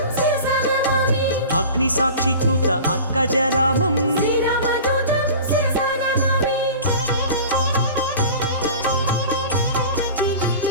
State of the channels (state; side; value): inverted; both; correlation -0.38